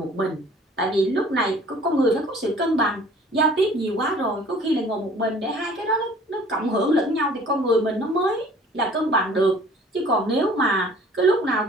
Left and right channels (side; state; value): both; normal; correlation 0.51